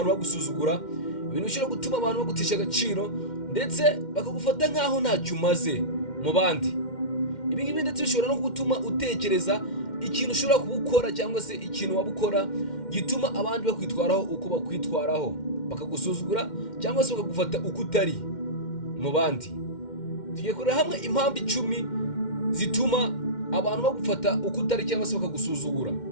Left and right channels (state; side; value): late; right; 2.1 ms